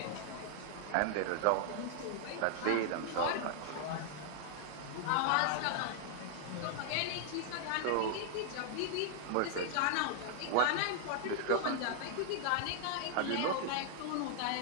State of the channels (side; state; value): both; different; correlation 0.00